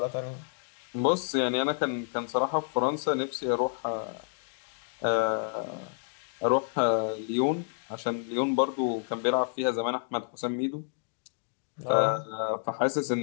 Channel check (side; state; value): right; silent; digital silence